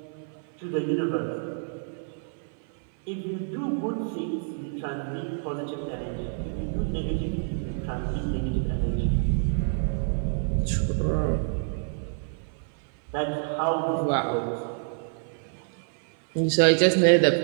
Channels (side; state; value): left; silent; 57 dB below the other